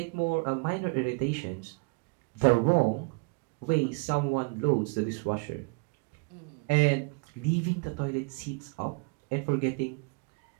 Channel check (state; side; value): quieter; left; 30.2 dB